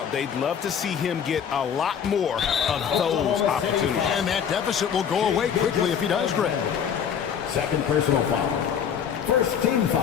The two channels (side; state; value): right; quieter; 7.9 dB